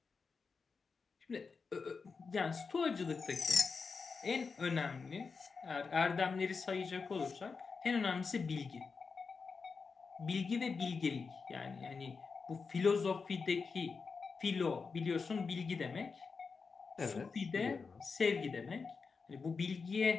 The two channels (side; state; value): right; quieter; 4.9 dB